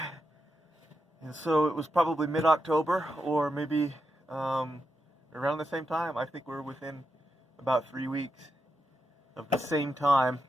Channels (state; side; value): normal; both; correlation 0.86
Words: And so it was probably mid-October, or maybe around the same time. I think we're within about 3 weeks of the same time